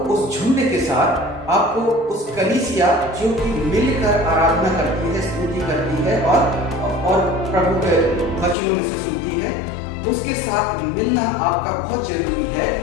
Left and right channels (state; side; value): drops out; right; at 8.6 s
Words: उस झुंड के साथ, आपको उस कलीसिया जो कि मिलकर आराधना करती है, स्तुति करती है और प्रभु के वचनों में से सुनती है, उसके साथ मिलना आपका बहुत जरूरी है।